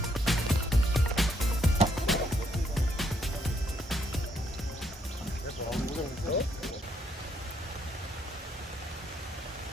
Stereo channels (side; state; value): both; normal; correlation 0.72